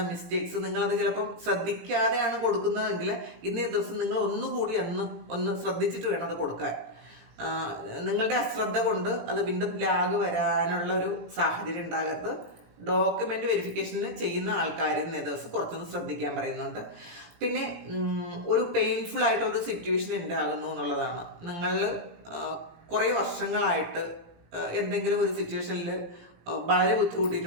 മിസ്റ്റേക്സ് നിങ്ങളത് ചിലപ്പം ശ്രദ്ധിക്കാതെയാണ് കൊടുക്കുന്നതെങ്കിൽ ഇന്നേ ദിവസം നിങ്ങൾ ഒന്നുകൂടി ഒന്ന് ശ്രദ്ധിച്ചിട്ട് വേണം അത് കൊടുക്കാൻ. നിങ്ങളുടെ അശ്രദ്ധ കൊണ്ട് അത് വീണ്ടും ലാഗ് വരാനുള്ള ഒരു സാഹചര്യം ഉണ്ടാകരുത്. ഡോക്യുമെൻ്റ് വെരിഫിക്കേഷന് ചെയ്യുന്ന ആൾക്കാർ ഇന്നേ ദിവസം കുറച്ചൊന്ന് ശ്രദ്ധിക്കാൻ പറയുന്നുണ്ട്. പിന്നെ ഒരു പെയിൻഫുൾ ആയിട്ടുള്ളൊരു സിറ്റുവേഷൻ ഉണ്ടാകുന്നു എന്നുള്ളതാണ്. നിങ്ങൾ കുറേ വർഷങ്ങളായിട്ട് എന്തെങ്കിലും ഒരു സിറ്റുവേഷനിൽ വളരെ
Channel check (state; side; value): late; left; 18 ms